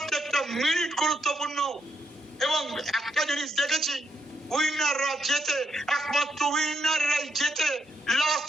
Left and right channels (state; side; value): normal; both; correlation 0.80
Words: মিনিট গুরুত্বপূর্ণ। এবং একটা জিনিস দেখেছি, উইনাররা জেতে, একমাত্র উইনাররাই জেতে লাস্ট